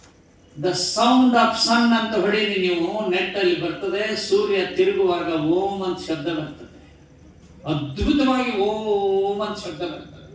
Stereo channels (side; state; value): both; identical; correlation 1.00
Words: ದ ಸೌಂಡ್ ಆಫ್ ಸನ್ ಅಂತ ಹೊಡೀರಿ ನೀವು, ನೆಟ್ ಅಲ್ಲಿ ಬರ್ತದೆ. ಸೂರ್ಯ ತಿರುಗುವಾಗ ಓಂ ಅಂತ ಶಬ್ದ ಬರ್ತದೆ, ಅದ್ಭುತವಾಗಿ ಓಂ ಅಂತ ಶಬ್ದ ಬರ್ತದೆ.